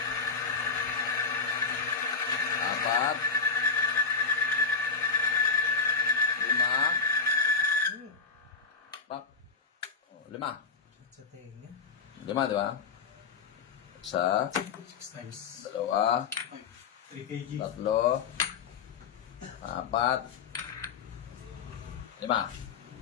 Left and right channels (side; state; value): right; quieter; 5.2 dB